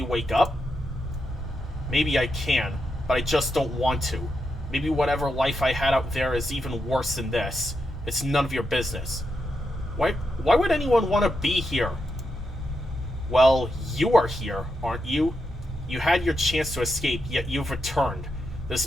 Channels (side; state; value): both; normal; correlation 0.84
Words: wake up? Maybe I can, but I just don't want to. Maybe whatever life I had out there is even worse than this. It's none of your business. Why would anyone want to be here? Well, you are here, aren't you? You had your chance to escape, yet you've returned. This